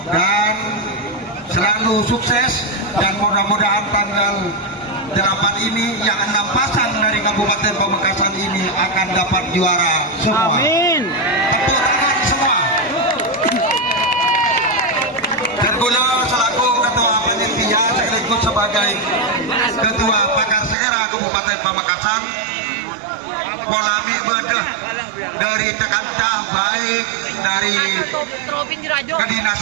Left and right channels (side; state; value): left; drops out; at 20.8 s